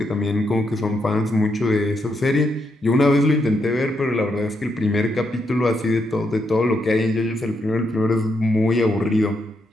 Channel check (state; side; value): normal; both; correlation 0.80